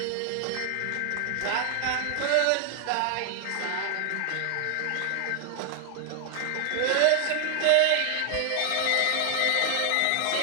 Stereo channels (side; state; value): both; different; correlation 0.00